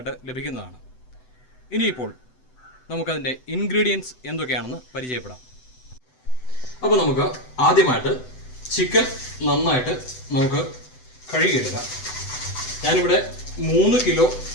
ലഭിക്കുന്നതാണ്. ഇനിയിപ്പോൾ നമുക്കതിൻ്റെ ഇൻഗ്രീഡിയൻസ് എന്തൊക്കെയാണെന്ന് പരിചയപ്പെടാം. അപ്പോൾ നമുക്ക് ആദ്യമായിട്ട് ചിക്കൻ നന്നായിട്ട് നമുക്ക് കഴുകിയെടുക്കാം. ഞാനിവിടെ 3 കിലോ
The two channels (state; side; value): late; right; 7.9 ms